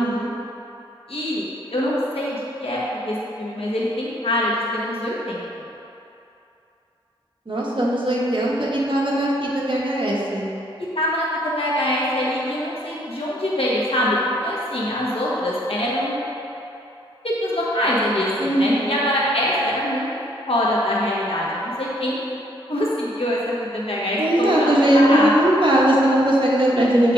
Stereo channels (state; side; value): normal; both; correlation 0.67